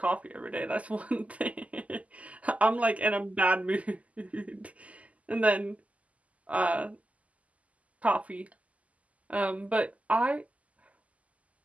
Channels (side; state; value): left; late; 0.070 ms